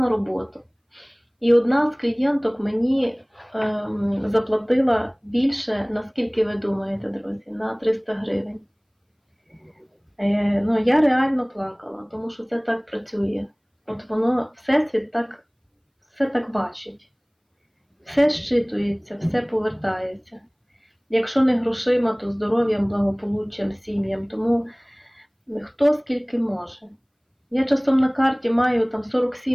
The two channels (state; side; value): identical; both; correlation 1.00